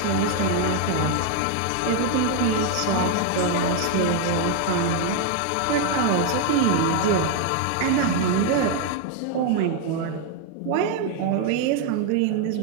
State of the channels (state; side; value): different; both; correlation 0.00